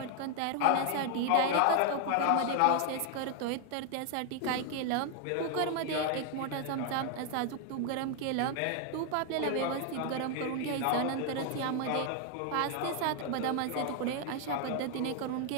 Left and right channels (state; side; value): different; both; correlation 0.00